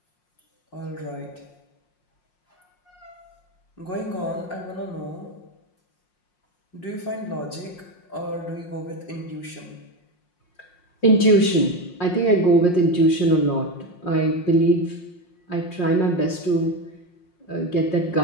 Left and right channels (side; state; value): right; late; 5.6 ms